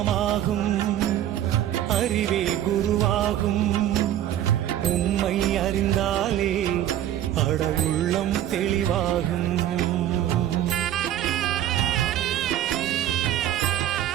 அறிவே குருவாகும். உம்மை அறிந்தாலே அட உள்ளம் தெளிவாகும்.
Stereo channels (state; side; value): quieter; left; 11.9 dB